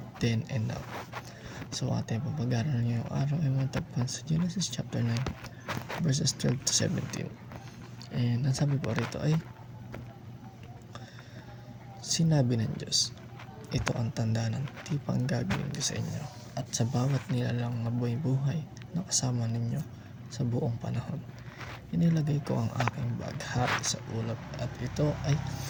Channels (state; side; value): identical; both; correlation 1.00